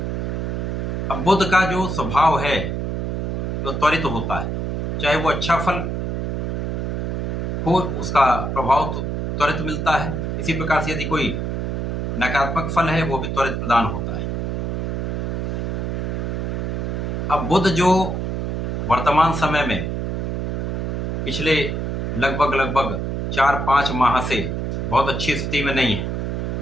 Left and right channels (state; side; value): noise; right; hum, 1 dB below the sound